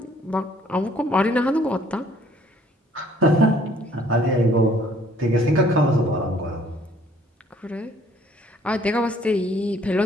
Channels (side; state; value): both; normal; correlation 0.60